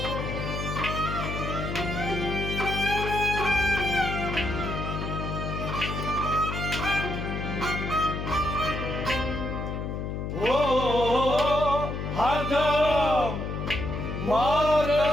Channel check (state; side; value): noise; left; hum, 4 dB below the sound